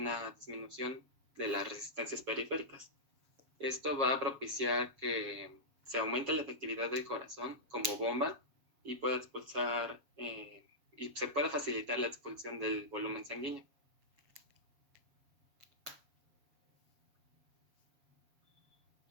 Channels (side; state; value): left; late; 7.3 ms